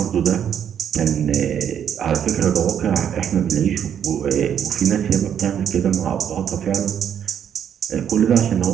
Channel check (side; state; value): left; quieter; 8.9 dB